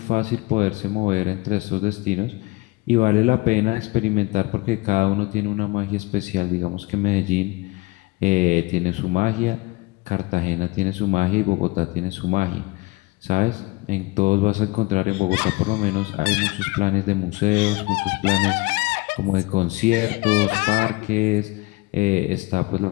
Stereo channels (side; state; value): right; quieter; 23.4 dB